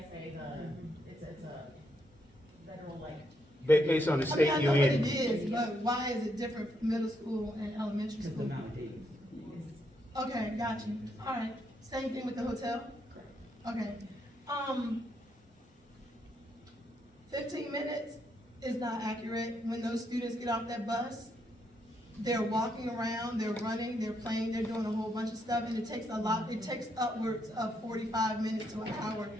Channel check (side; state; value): both; normal; correlation 0.77